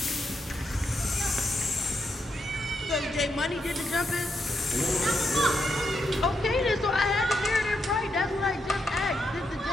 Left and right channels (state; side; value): normal; both; correlation 0.81